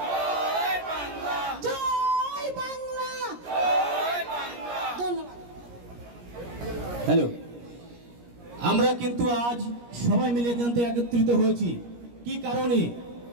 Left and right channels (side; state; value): left; late; 17 ms